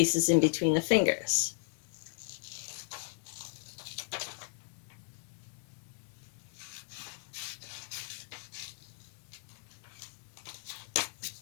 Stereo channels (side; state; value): right; silent; digital silence